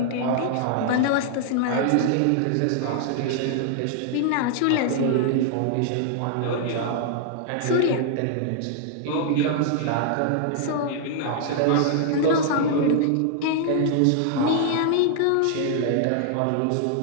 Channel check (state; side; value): different; both; correlation -0.01